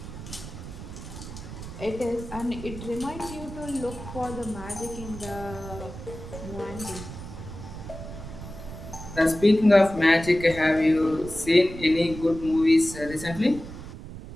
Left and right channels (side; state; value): right; noise; rumble, 12 dB below the sound